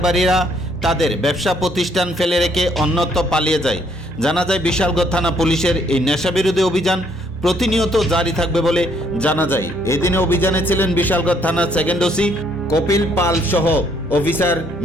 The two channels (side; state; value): both; normal; correlation 0.68